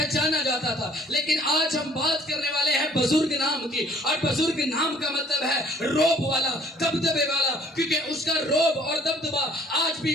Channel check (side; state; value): both; normal; correlation 0.56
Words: جاتا تھا۔ لیکن آج ہم بات کرنے والے ہیں بزرگ نام کی، اور بزرگ نام کا مطلب ہے روب والا، دبدبے والا، کیونکہ اس کا روب اور دبدبا آج